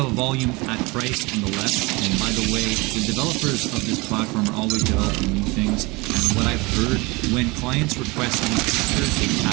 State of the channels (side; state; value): left; quieter; 25.1 dB